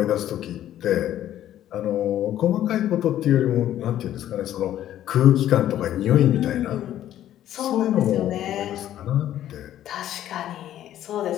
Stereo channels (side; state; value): right; quieter; 12.0 dB